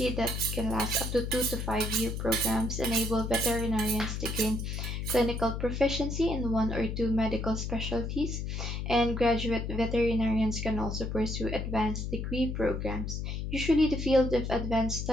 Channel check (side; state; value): left; noise; hum, 4 dB below the sound